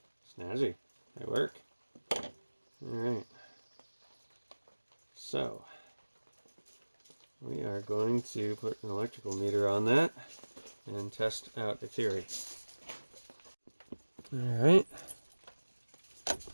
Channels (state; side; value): inverted; both; correlation -1.00